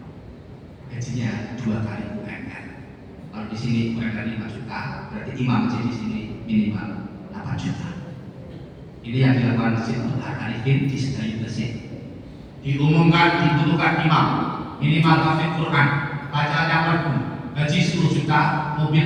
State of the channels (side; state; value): both; identical; correlation 1.00